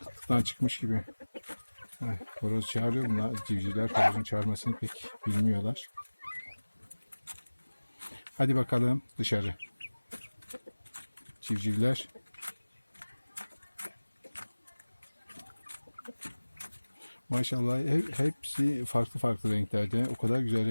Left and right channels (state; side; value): inverted; both; correlation -1.00